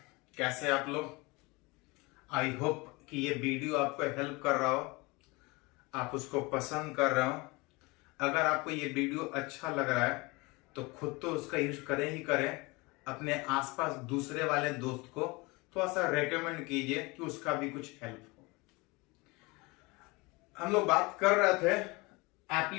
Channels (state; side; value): quieter; right; 25.1 dB